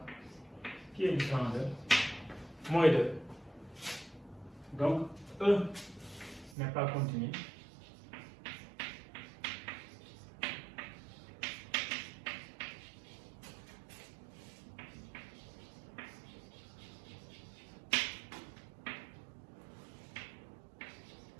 qui est différent de moins 2. Donc, E n'est pas continu.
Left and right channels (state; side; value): drops out; left; at 6.6 s